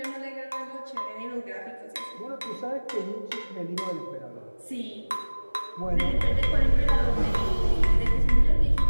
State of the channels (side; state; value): both; inverted; correlation -1.00